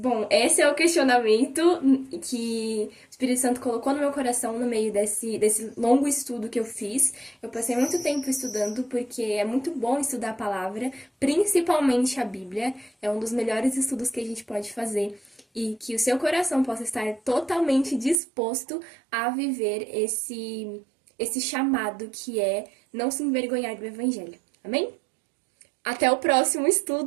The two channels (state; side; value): drops out; left; at 18.2 s